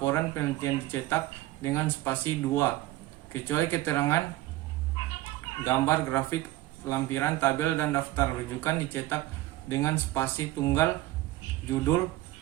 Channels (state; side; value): quieter; left; 16.6 dB